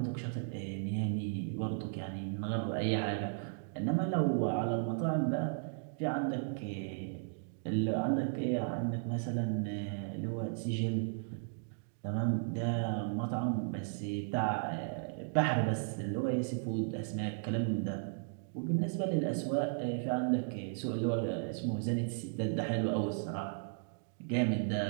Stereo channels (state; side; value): silent; left; digital silence